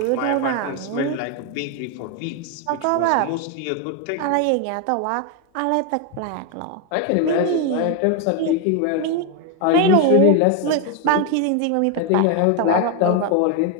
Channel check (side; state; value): both; different; correlation 0.01